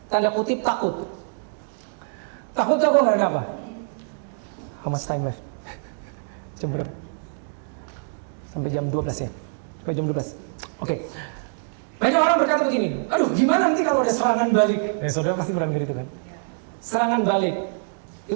tanda kutip takut. Takut jago nggak ada apa? How much time left? Jam berapa? Sampai jam 12 ya? Sampai jam 12. Oke. Banyak orang berkata begini, aduh gimana nanti kalau ada serangan balik? Saudara pasti pernah dengar itu kan? Serangan balik.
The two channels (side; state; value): left; silent; 62 dB below the other